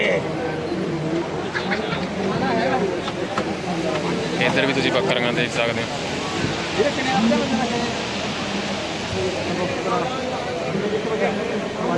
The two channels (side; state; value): both; identical; correlation 1.00